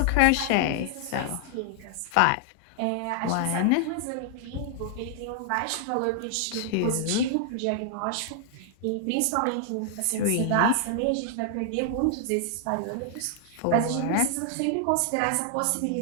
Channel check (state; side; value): different; both; correlation -0.01